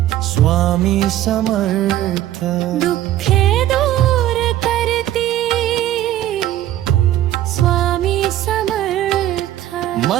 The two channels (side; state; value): left; quieter; 13.2 dB